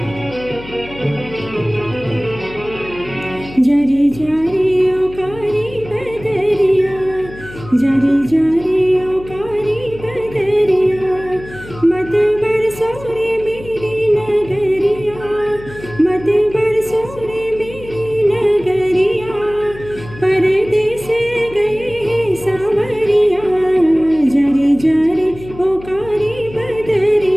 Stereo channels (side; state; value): left; noise; hum, 16 dB below the sound